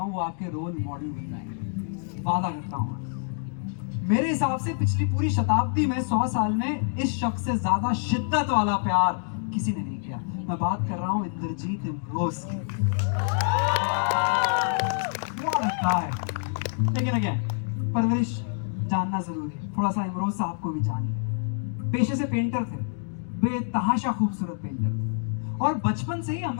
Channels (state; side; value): silent; right; 60 dB below the other